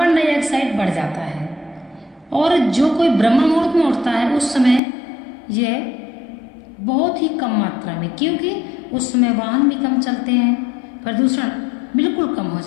डाइऑक्साइड बढ़ जाता है। और जो कोई ब्रह्म मुहूर्त में उठता है उस समय यह बहुत ही कम मात्रा में, क्योंकि उस समय वाहन भी कम चलते हैं, प्रदूषण बिल्कुल कम हो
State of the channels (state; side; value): drops out; right; at 4.8 s